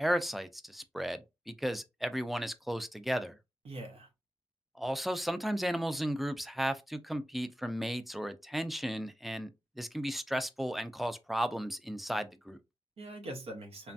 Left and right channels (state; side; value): normal; both; correlation 0.94